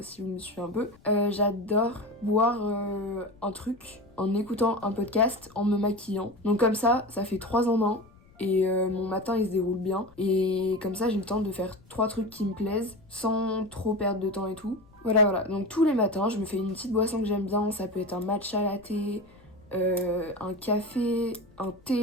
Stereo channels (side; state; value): left; noise; rumble, 27 dB below the sound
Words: si vous me suivez un peu, j'adore boire un truc en écoutant un podcast, en me maquillant. Donc comme ça fait 3 en 1, et mon matin il se déroule bien. Et comme ça j'ai le temps de faire 3 trucs qui me plaisent, sans trop perdre de temps et tout. Voilà, donc tous les matins je me fais une petite boisson que j'aime bien, ça peut être un matcha latte, un café, un